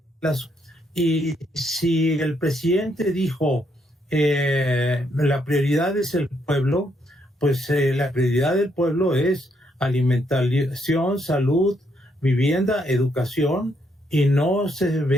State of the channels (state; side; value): normal; both; correlation 0.74